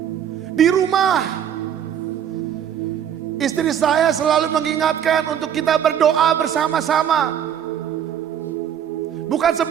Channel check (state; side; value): quieter; left; 9.2 dB